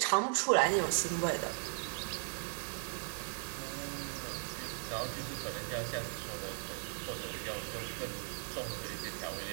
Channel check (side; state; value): left; silent; 53 dB below the other